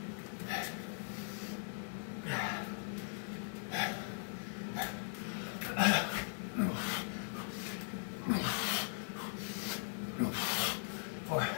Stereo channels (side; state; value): right; silent; digital silence